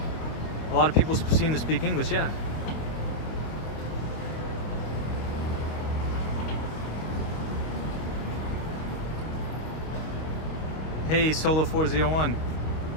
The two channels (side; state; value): right; late; 25 ms